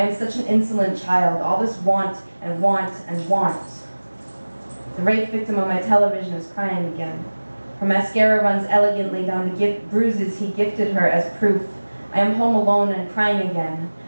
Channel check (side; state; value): both; inverted; correlation -1.00